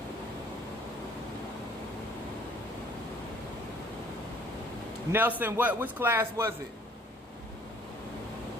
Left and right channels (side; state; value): both; normal; correlation 0.56